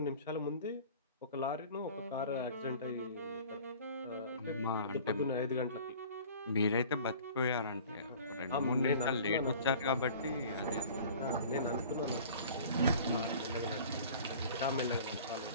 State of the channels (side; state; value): both; inverted; correlation -0.45